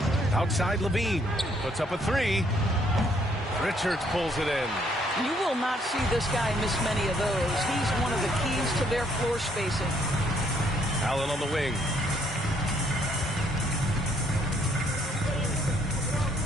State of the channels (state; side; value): normal; both; correlation 0.68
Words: Outside Levine, puts up a 3. Richards pulls it in. You will not see this guy miss many of those. He's one of the keys to their floor spacing. Allen on the wing.